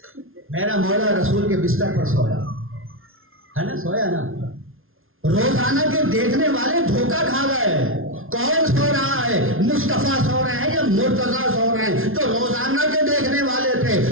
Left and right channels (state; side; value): late; left; 0.61 ms